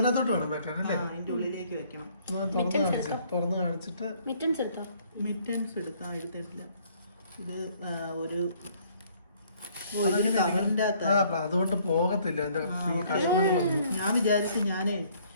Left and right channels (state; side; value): inverted; both; correlation -0.62